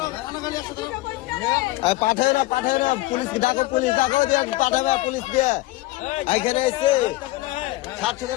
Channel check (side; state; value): right; quieter; 19.2 dB